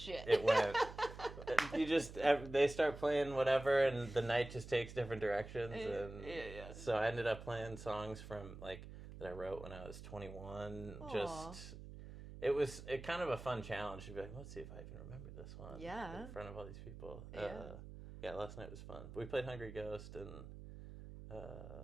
It went. They start playing whatever, and the night just takes different directions, and so I ended up playing songs from like that I wrote when I was 21. Aww. Just it was kind of a fun challenge to be like, let's see if I can remember this one. In front of all these people. Last night was fun. We played Hungry Ghost and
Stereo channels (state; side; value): noise; right; hum, 13 dB below the sound